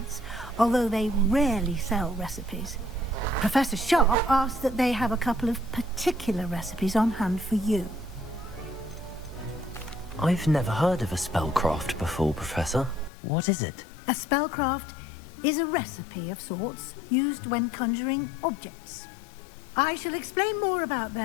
although they rarely sell recipes. Professor Sharp asked that they have a couple of particular recipes on hand for you. I've never heard of a spellcraft before, Professor. What is it? A spellcraft is a recipe of sorts used when conjuring objects. I shall explain more about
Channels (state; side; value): drops out; right; at 13.1 s